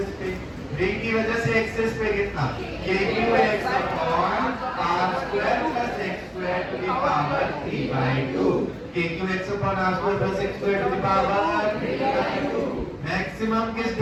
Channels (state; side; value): identical; both; correlation 1.00